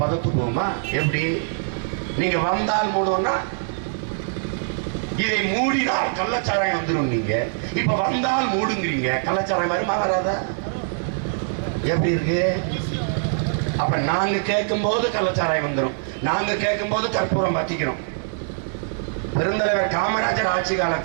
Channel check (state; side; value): silent; left; 63 dB below the other